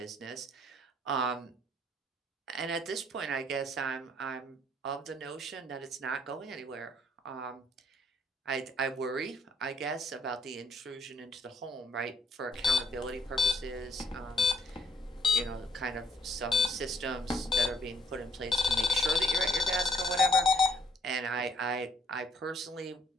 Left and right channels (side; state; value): both; normal; correlation 0.65